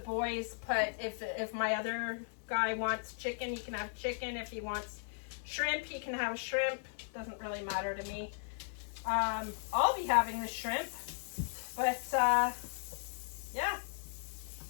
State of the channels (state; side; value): silent; right; digital silence